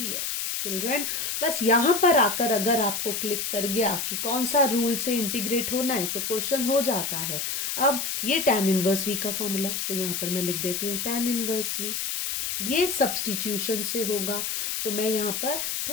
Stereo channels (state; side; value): noise; left; hiss, 2 dB below the sound